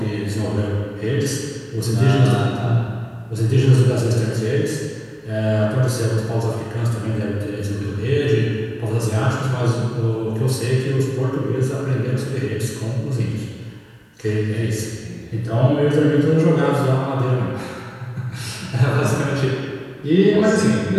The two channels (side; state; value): both; identical; correlation 1.00